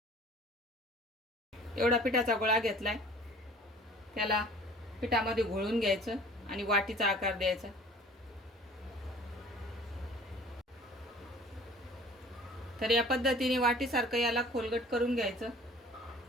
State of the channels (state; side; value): normal; both; correlation 0.49